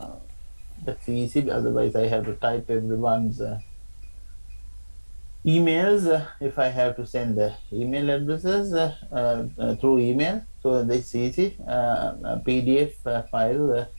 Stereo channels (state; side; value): inverted; both; correlation -1.00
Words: That's easy, otherwise I have to type everyone's emails if I have to send the email addresses through email. So that's easy. A PDF file